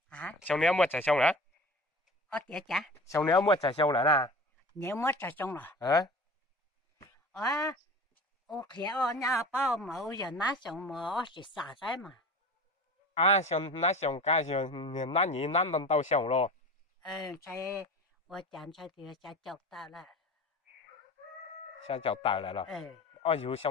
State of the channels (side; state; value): both; normal; correlation 0.36